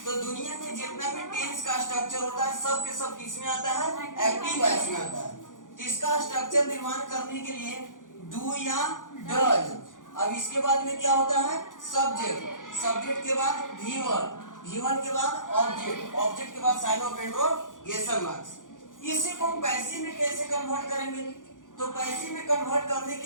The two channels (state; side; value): late; right; 0.88 ms